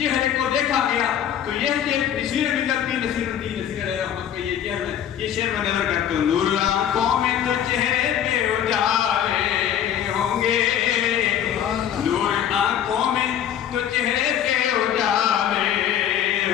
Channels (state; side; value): quieter; right; 9.9 dB